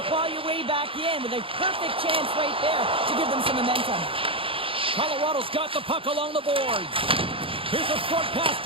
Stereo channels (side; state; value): left; late; 0.26 ms